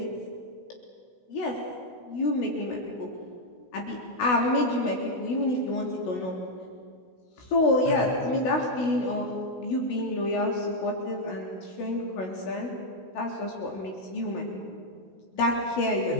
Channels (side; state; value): right; late; 16 ms